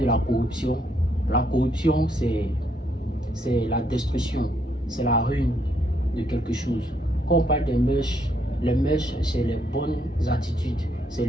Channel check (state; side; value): normal; both; correlation 0.73